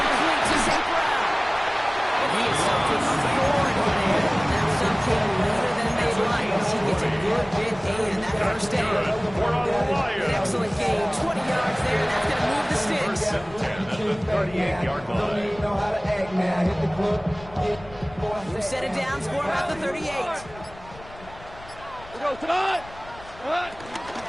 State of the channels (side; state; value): left; noise; rumble, 19 dB below the sound